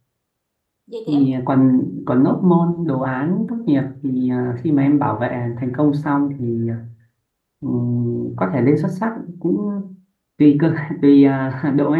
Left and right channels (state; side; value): identical; both; correlation 1.00